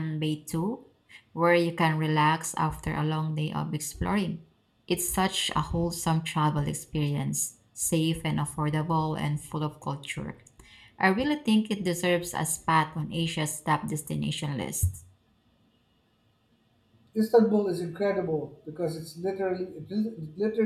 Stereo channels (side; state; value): both; identical; correlation 1.00